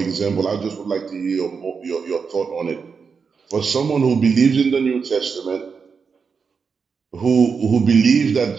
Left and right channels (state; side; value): quieter; left; 5.6 dB